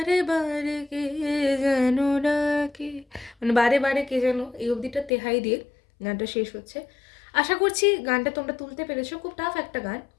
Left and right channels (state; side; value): drops out; right; at 5.1 s